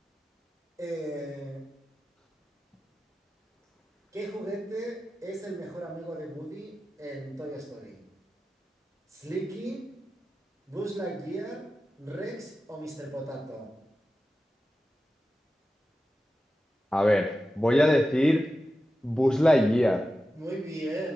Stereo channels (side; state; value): both; normal; correlation 0.93